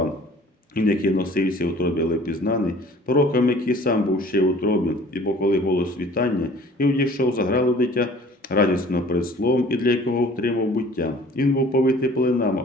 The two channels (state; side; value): normal; both; correlation 0.50